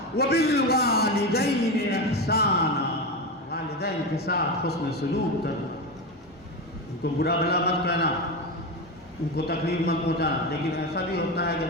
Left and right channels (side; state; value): both; normal; correlation 0.18